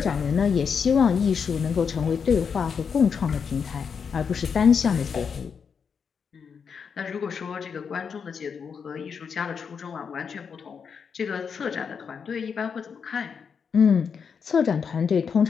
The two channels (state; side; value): quieter; right; 6.4 dB